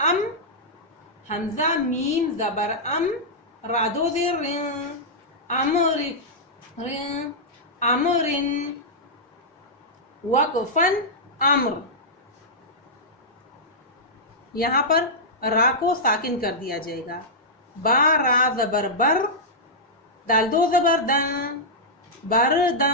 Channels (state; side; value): normal; both; correlation -0.10